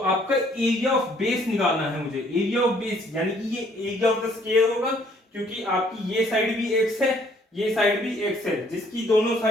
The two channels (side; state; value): both; normal; correlation 0.63